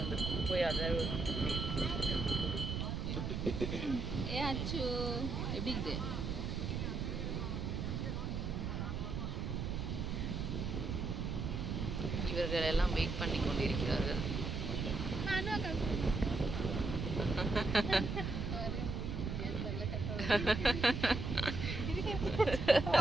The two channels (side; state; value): right; noise; rumble, 2 dB below the sound